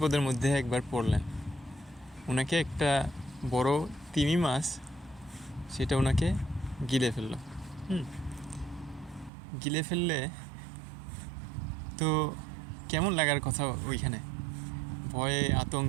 মধ্যে একবার পড়লেন। ওনাকে একটা বড় তিমি মাছ সেটা ওনাকে গিলে ফেললো। হুম গিলে ফেললে তো কেমন লাগার কথা ওইখানে, ভয়ে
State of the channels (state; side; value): drops out; left; at 9.3 s